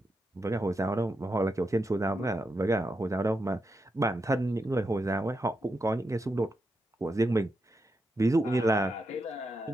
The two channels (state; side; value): normal; both; correlation 0.85